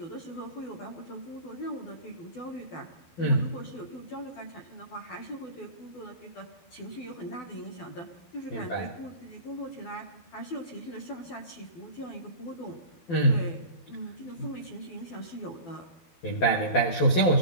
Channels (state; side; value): late; right; 12 ms